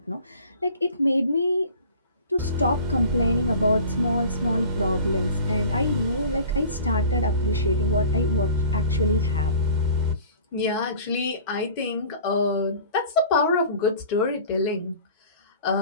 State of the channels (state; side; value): inverted; both; correlation -0.44